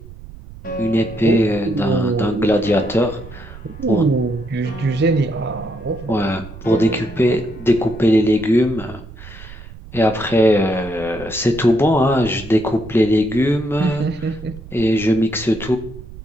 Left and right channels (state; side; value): noise; right; rumble, 16 dB below the sound